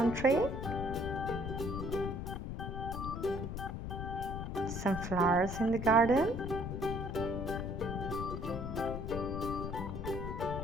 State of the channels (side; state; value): left; noise; rumble, 5 dB below the sound